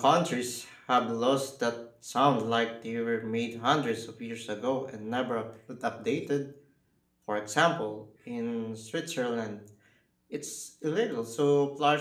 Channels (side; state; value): both; identical; correlation 1.00